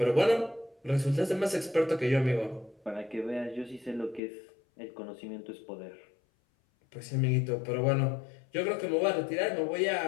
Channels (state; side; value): drops out; right; at 4.2 s